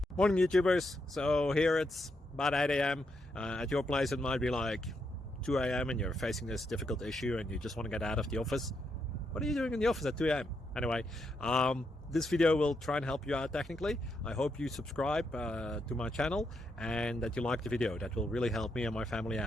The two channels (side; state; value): both; normal; correlation 0.80